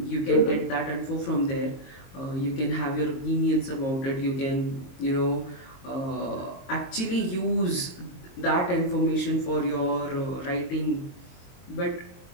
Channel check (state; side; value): late; right; 22 ms